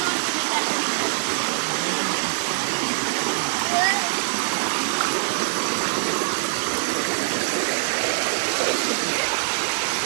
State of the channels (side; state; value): left; silent; digital silence